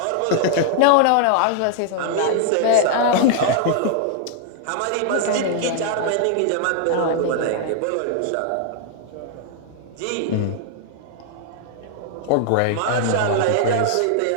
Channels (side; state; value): both; different; correlation -0.01